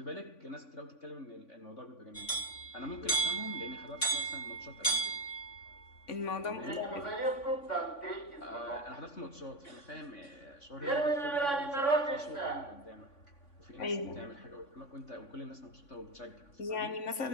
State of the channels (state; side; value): late; right; 3.5 ms